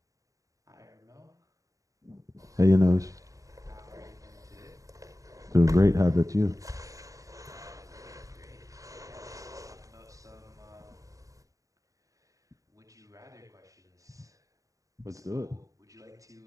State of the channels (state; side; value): late; left; 0.16 ms